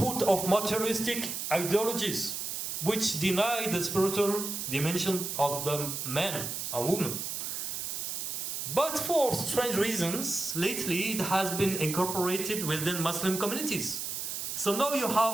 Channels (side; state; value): right; noise; hiss, 4 dB below the sound